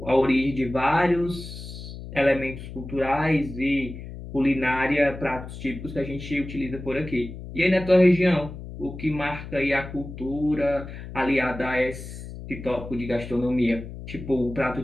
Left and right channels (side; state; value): left; noise; hum, 11 dB below the sound